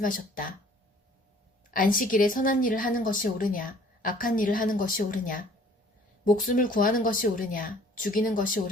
안식일에 선한 일을 하는 것이 옳으냐, 악한 일을 하는 것이 옳으냐, 목숨을 구하는 것이 옳으냐, 죽이는 것이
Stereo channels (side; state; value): both; normal; correlation 0.54